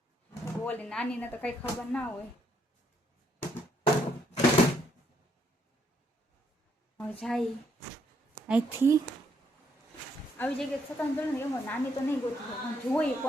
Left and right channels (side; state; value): both; normal; correlation 0.72